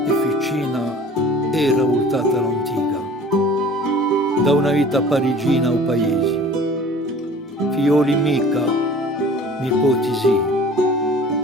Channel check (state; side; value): normal; both; correlation 0.46